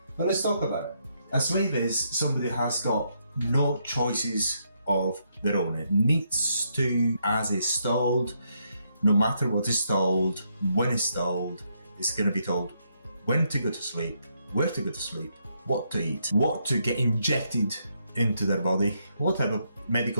But let's talk about it. A slave is somebody who has got no choices of their own. It needs to, as is told, no matter what is told, when it's told, it's going to be told when to go to sleep, where to go to sleep, what to eat, what to get injected into their body, what type of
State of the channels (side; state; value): both; inverted; correlation -0.77